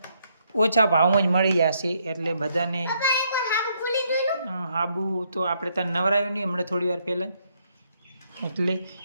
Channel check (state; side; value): inverted; both; correlation -0.73